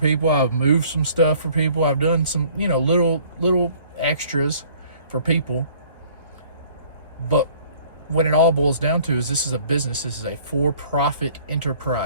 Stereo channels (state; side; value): inverted; both; correlation -0.55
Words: I've moved some stuff for people. I've done some, little extras for people. But when it all boils down to is, this is a business. This is a for-profit